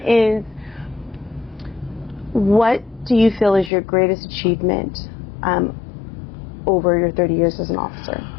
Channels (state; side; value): drops out; right; at 3.7 s